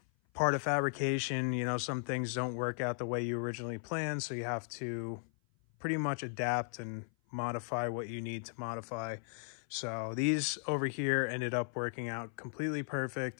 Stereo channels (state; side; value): silent; right; 53 dB below the other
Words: part of fabrication, some things don't work out the way you originally planned, so you have to pretty much adapt and modify what you need to modify. So these over here ended up working out completely